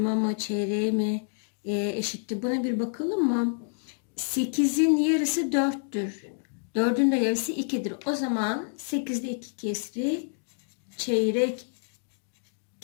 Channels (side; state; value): right; silent; digital silence